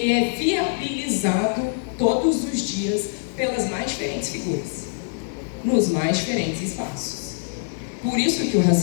é viabilizado todos os dias pelas mais diferentes figuras, nos mais diferentes espaços. Por isso que o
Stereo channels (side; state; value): right; silent; digital silence